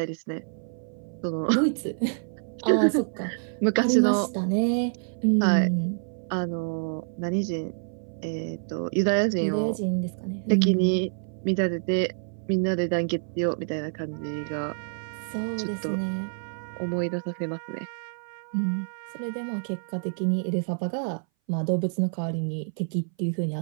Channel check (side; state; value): left; silent; 59 dB below the other